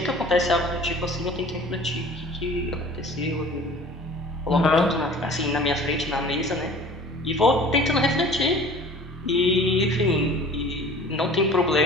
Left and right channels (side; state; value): both; normal; correlation 0.45